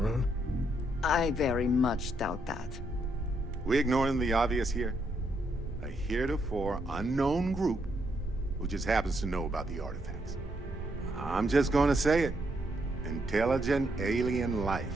I very much doubt that. We ignoring the obvious here? A heretofore unknown group who just happens to know about the artifacts. I'm just gonna say it. Intelligent alien life,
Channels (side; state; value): both; normal; correlation 0.76